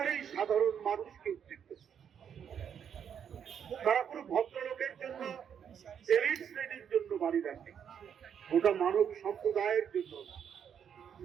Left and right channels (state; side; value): quieter; left; 8.2 dB